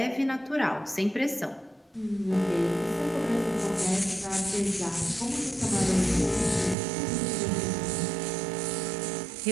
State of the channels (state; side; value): drops out; left; at 6.8 s